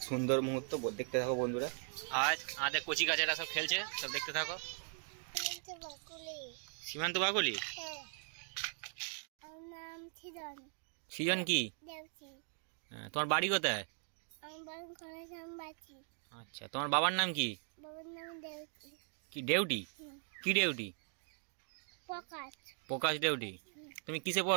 সুন্দর মুহূর্ত দেখতে থাকো বন্ধুরা। আজ আমাদের কচি কাচারা সব খেলছে, সব দেখতে থাকো। সীমান্ত বাকুলি। সৃজন কি? তোমার বাড়ি কোথায়? আচ্ছা, তোমার বাবার নাম কি? কি দেউটি? কি দেউটি? প্রকাশ দেউটি। তুমি কিসে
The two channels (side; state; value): left; silent; 52 dB below the other